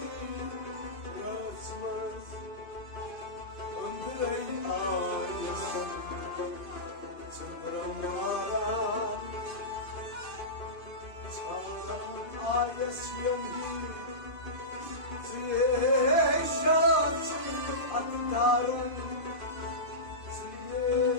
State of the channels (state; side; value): late; right; 2.5 ms